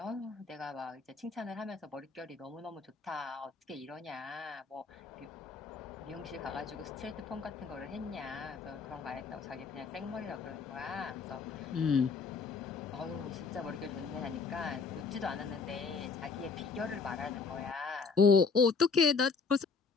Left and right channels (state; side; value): quieter; right; 5.0 dB